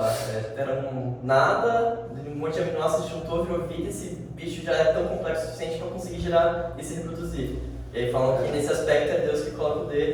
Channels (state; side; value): identical; both; correlation 1.00